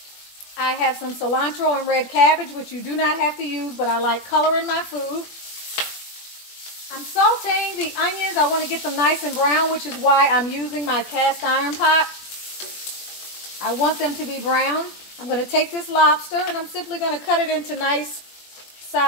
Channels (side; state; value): right; late; 21 ms